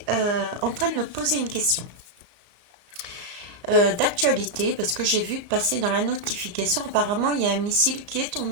en train de me poser une question d'actualité parce que j'ai vu passer dans la notification, apparemment il y a un missile qui est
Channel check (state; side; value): late; left; 34 ms